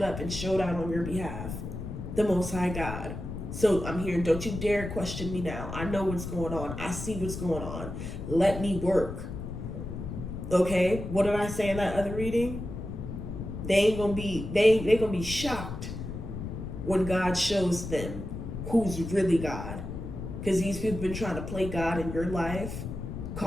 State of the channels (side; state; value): left; noise; rumble, 7 dB below the sound